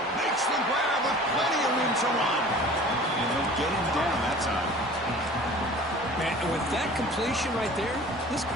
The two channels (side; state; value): both; normal; correlation 0.44